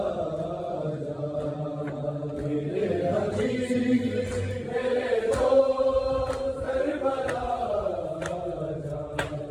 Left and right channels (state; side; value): identical; both; correlation 1.00